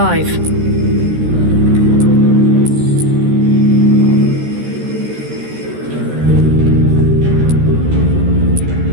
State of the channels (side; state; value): left; late; 13 ms